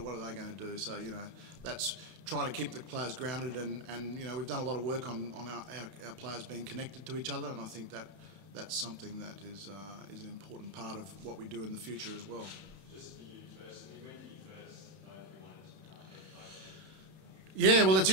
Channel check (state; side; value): late; left; 31 ms